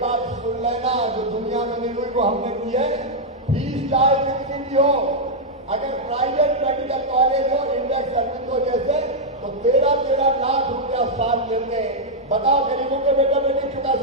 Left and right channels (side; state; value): both; normal; correlation -0.04